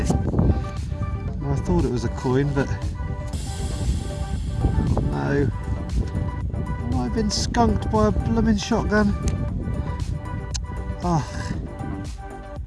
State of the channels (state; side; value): identical; both; correlation 1.00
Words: Well, I thought it was a coin, but no. Oh, I've been skunked by a blooming shotgun. Ugh.